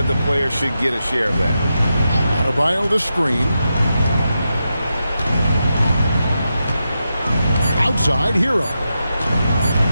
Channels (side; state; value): both; inverted; correlation -0.88